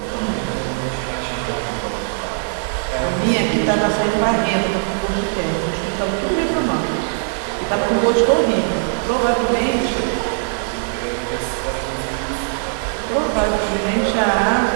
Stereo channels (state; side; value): silent; left; digital silence